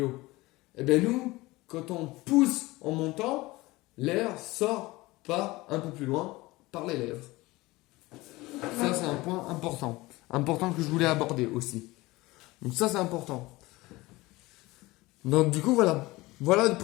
Et bien nous, quand on pousse en montant, l'air sort par un peu plus loin, par les lèvres. Ça, c'est un point important. Important que je voulais aborder aussi. Donc ça, c'est important. Donc du coup, voilà. Voilà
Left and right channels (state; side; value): quieter; right; 20.5 dB